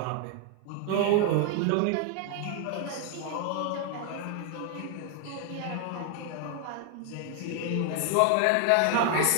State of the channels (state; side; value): different; both; correlation 0.00